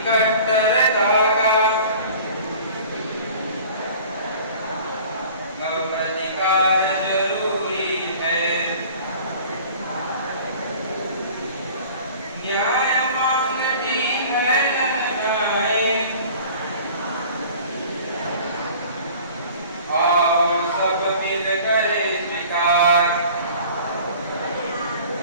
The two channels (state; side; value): inverted; both; correlation -0.46